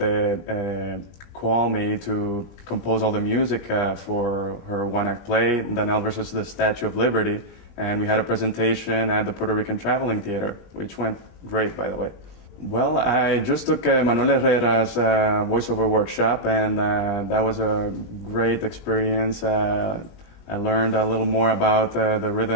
call me to compose all the music for her one-act play, Danelle versus the Statue of Liberty, and we had a presentation at the Puerto Rican Traveling Theater, which went great, by the way. Well, I just took Manuel Herrera's voiceover workshop, and that was a great experience. I learned a little more about the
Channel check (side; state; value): right; late; 20 ms